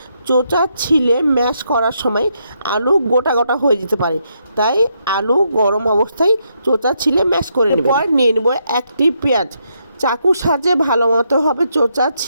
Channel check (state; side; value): inverted; both; correlation -0.78